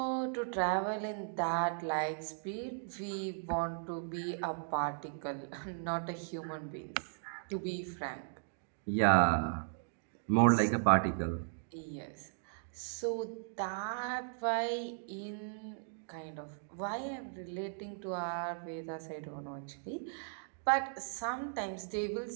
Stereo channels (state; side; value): silent; left; digital silence